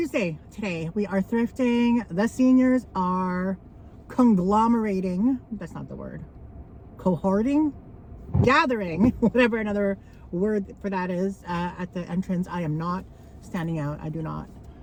today. We are thrifting. The seniors are conglomerating. That's not the word. Cohorting? Gathering. Whatever another word for that is. At the entrance. I am not standing out. I do not.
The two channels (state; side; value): identical; both; correlation 1.00